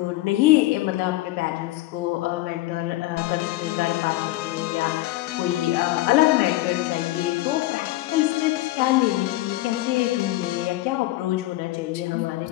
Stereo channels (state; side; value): quieter; right; 17.6 dB